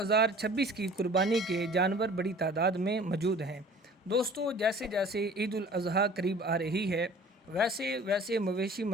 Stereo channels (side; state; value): both; normal; correlation 0.47